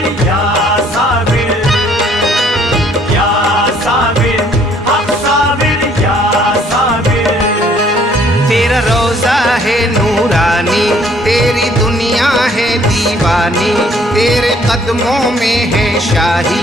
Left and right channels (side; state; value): both; normal; correlation 0.61